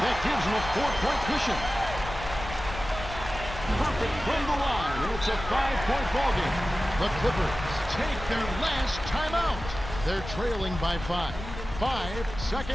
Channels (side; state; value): left; noise; rumble, 10 dB below the sound